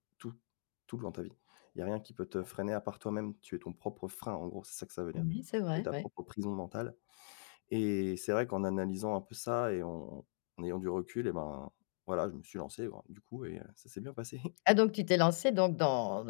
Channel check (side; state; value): right; silent; digital silence